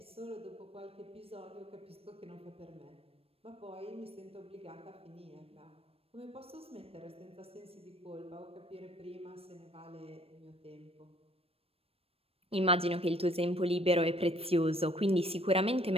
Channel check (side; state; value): left; late; 0.28 ms